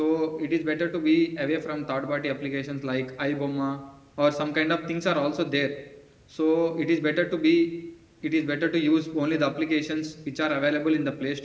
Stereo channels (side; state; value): both; identical; correlation 1.00